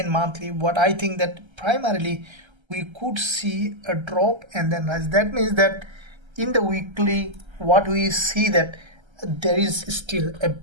monthly, what I think that primarily we could see a drop and then rise. That means that in the weekly what we see that there is still a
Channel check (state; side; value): late; left; 1.3 ms